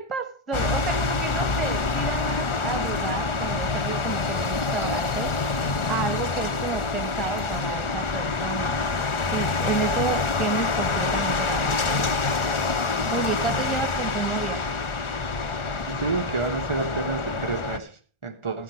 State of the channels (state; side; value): late; right; 1.4 ms